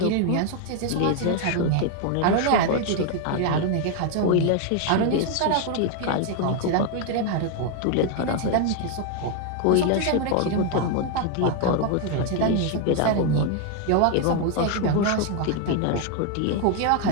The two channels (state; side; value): different; both; correlation 0.00